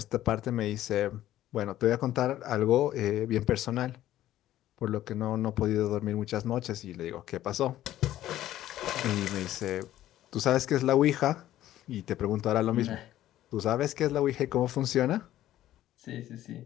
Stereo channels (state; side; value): quieter; right; 13.5 dB